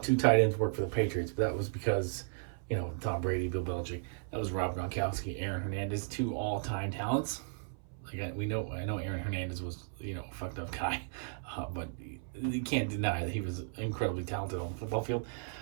tight ends work for the Patriots, but that was because, Tom Brady, Bill Belichick. That was Rob Gronkowski, Aaron Hernandez, 2 all-time talents. I know Aaron Hernandez was, a fucked up guy, but you can't deny that he was incredibly talented on the football field.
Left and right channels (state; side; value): silent; left; 54 dB below the other